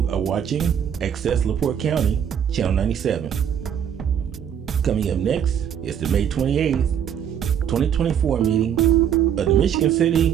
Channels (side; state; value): left; quieter; 8.8 dB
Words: are watching Access LaPorte County, Channel 97. Coming up next is the May 28th, 2024 meeting of the Michigan